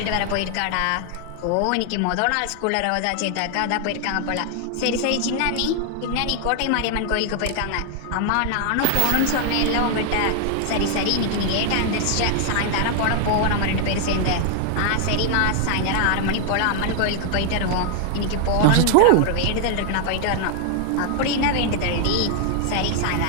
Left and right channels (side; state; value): both; different; correlation 0.00